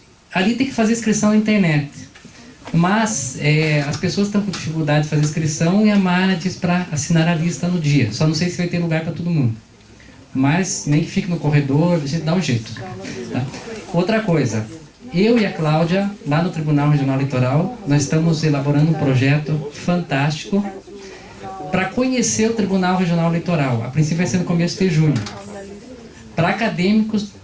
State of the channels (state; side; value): identical; both; correlation 1.00